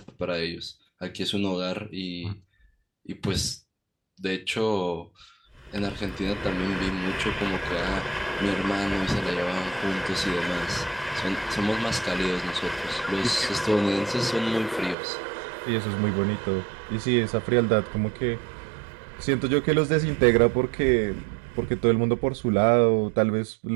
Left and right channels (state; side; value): drops out; left; at 15.0 s